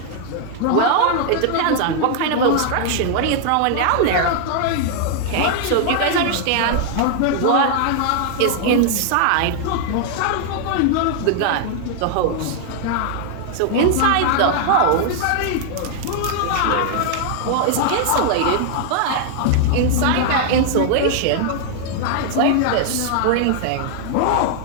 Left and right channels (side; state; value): both; different; correlation 0.00